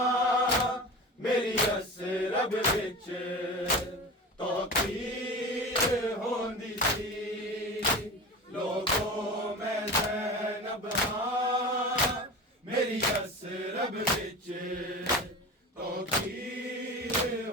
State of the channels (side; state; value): both; normal; correlation 0.31